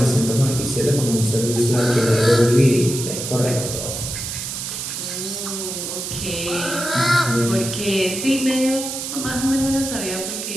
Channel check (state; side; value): noise; right; hiss, 5 dB below the sound